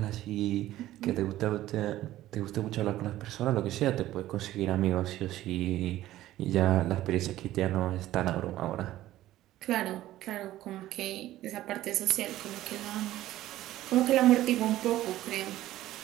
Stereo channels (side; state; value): left; quieter; 14.6 dB